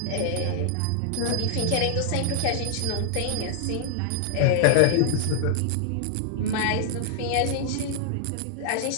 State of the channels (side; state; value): both; different; correlation -0.01